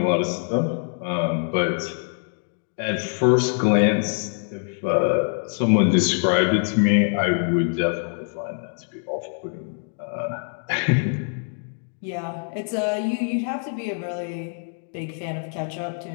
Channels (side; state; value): right; silent; 58 dB below the other